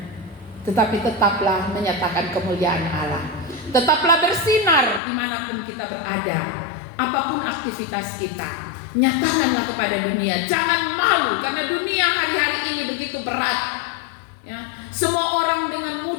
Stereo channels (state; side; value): drops out; right; at 5.0 s